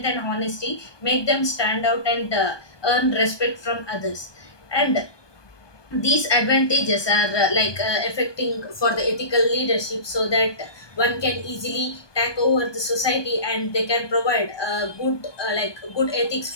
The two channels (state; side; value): late; right; 1.2 ms